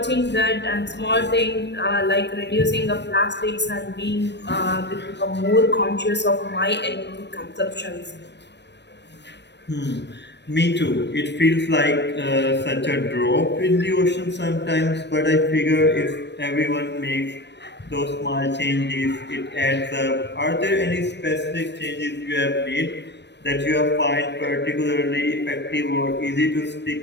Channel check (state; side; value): late; right; 0.50 ms